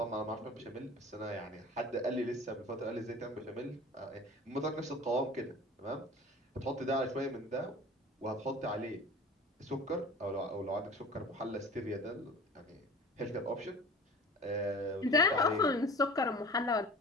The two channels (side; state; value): both; normal; correlation 0.41